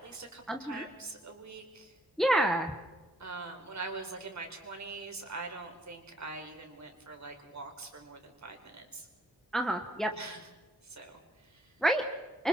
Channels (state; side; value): normal; both; correlation 0.67